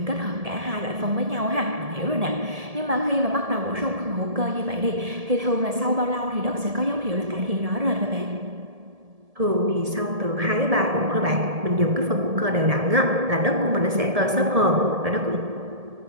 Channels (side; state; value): left; late; 1.7 ms